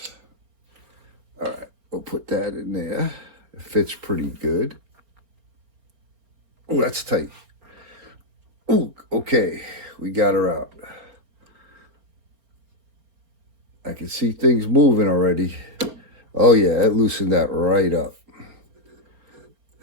All right, we'll put that in there. It fits pretty good. Oh, that's tight. Oh, okay, we got her out. I can see things moving already. Oh yeah, it loosened that right up.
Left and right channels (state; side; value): late; left; 4.3 ms